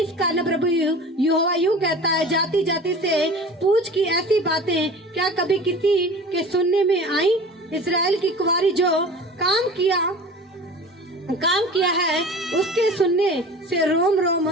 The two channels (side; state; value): both; normal; correlation 0.39